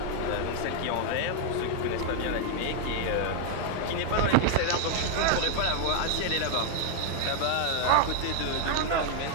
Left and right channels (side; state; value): both; different; correlation 0.00